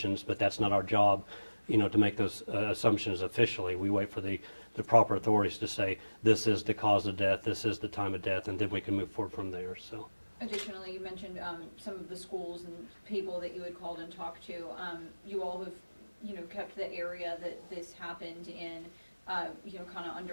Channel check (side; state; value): both; inverted; correlation -1.00